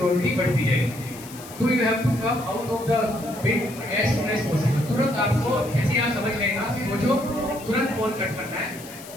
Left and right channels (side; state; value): left; noise; hiss, 17 dB below the sound